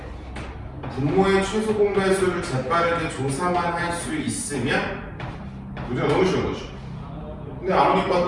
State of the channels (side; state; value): both; identical; correlation 1.00